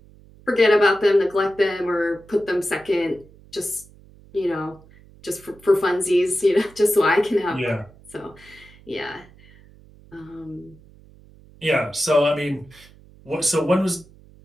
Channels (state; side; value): noise; right; hum, 25 dB below the sound